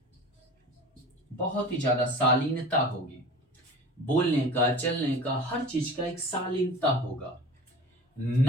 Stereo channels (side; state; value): both; normal; correlation 0.37